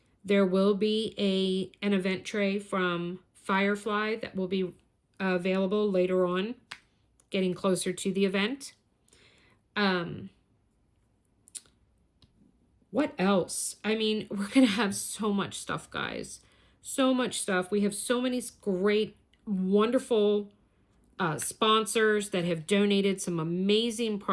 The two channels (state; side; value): identical; both; correlation 1.00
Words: There will be an event tray from Firefly that will be available later on, getting closer to the event. What else? I mean, we're going to have so much stuff, guys. So much stuff. We have so many great, wonderful sponsors that have donated some amazing